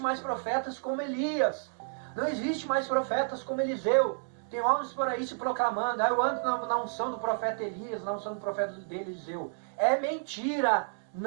profetas como Elias. Não existe mais profetas como Eliseu. Tem homens por aí se proclamando, eu ando na unção do profeta Elias, na unção do profeta Eliseu. É mentira,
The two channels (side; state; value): left; silent; digital silence